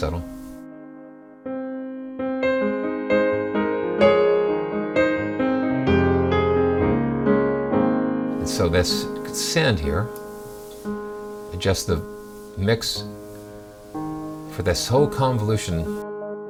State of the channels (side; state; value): both; identical; correlation 1.00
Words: And so let's send here, adjust the mix for this whole convolution.